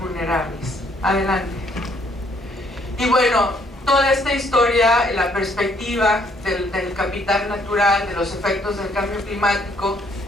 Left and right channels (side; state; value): both; normal; correlation 0.67